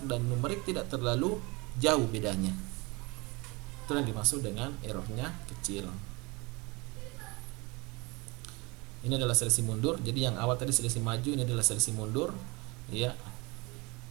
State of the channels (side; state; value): left; quieter; 26.1 dB